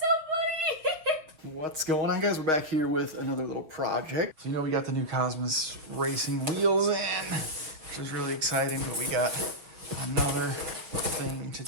funny. What's going on, guys? We're back here with another little project. So, you know, we got the new Cosmos racing wheels in, which is really exciting, but we got another thing to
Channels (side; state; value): left; late; 6.6 ms